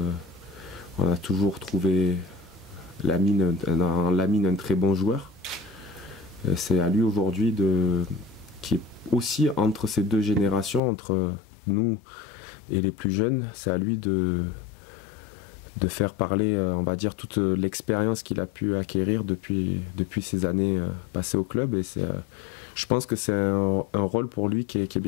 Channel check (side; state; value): right; drops out; at 10.8 s